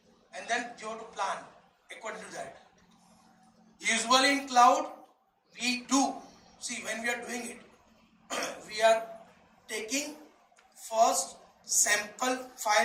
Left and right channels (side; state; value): both; identical; correlation 1.00